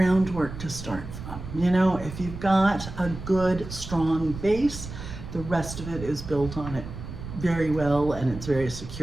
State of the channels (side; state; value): right; noise; rumble, 10 dB below the sound